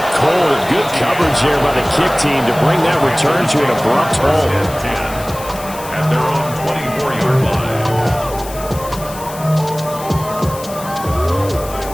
cold. Good coverage there by the kick team to bring that return to an abrupt halt. At their own 24-yard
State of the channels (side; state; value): left; noise; hiss, 15 dB below the sound